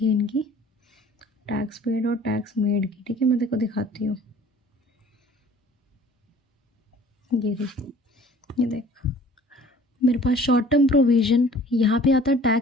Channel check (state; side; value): normal; both; correlation 0.50